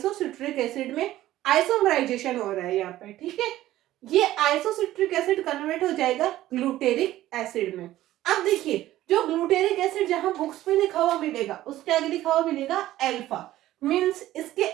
एसिड में, आइसोमराइजेशन हो रहा है यहाँ पे, ठीक है। ये आइसोसिट्रिक एसिड कन्वर्ट हो जाएगा ग्लूटेरिक एसिड में। अब देखिए, जो ग्लूटेरिक एसिड जहां बुक्स में लिखा हुआ मिलेगा उसके आगे लिखा हुआ मिलेगा अल्फा, मींस इसके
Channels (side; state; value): left; quieter; 14.7 dB